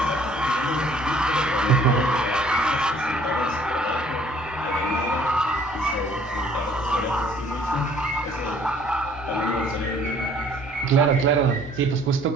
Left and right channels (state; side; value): normal; both; correlation 0.58